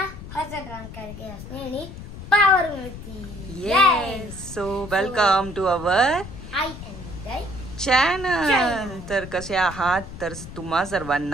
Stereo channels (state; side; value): noise; left; rumble, 12 dB below the sound